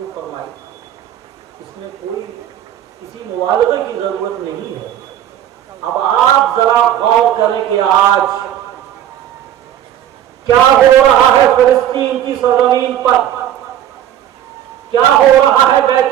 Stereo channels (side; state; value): left; quieter; 11.3 dB